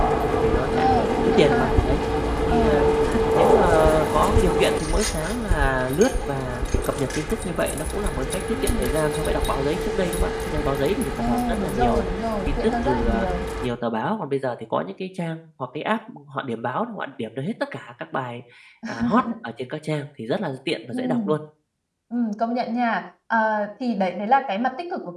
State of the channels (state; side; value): identical; both; correlation 1.00